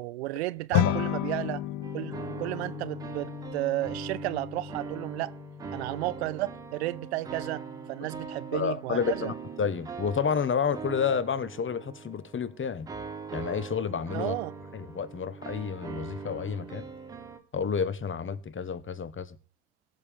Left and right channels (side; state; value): both; normal; correlation 0.07